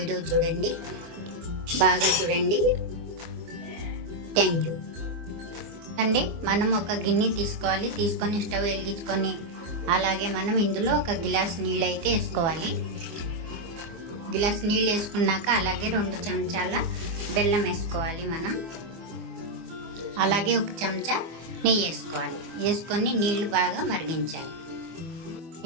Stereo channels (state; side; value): late; left; 24 ms